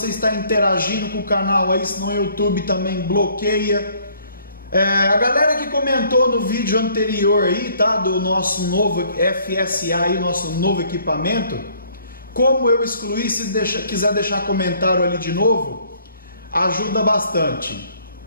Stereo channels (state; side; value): inverted; both; correlation -0.61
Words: estar interagindo com o canal aí, senão o YouTube também bloqueia. A galera que comentou no vídeo anterior aí, tá, do nosso novo FSA aí, nosso novo equipamento, como eu excluí, se quiser deixar comentário ali de novo, ajuda bastante.